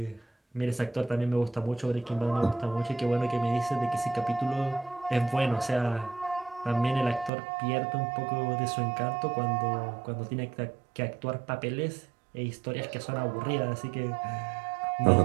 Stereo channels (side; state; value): left; drops out; at 7.3 s